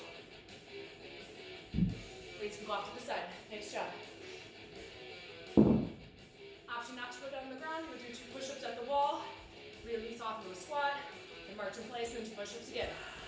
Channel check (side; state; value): both; identical; correlation 1.00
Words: Weights can go off to the side. Nice job. Option not to go down on the ground. We'll do 2 push-ups at the wall. Release off into a squat. And march in place and 2 push-ups again.